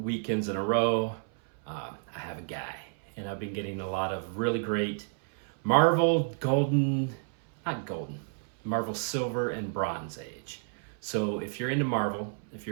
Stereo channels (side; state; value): left; silent; 57 dB below the other